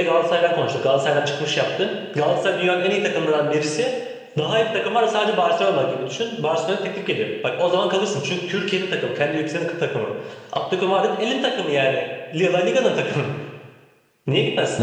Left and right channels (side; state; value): both; identical; correlation 1.00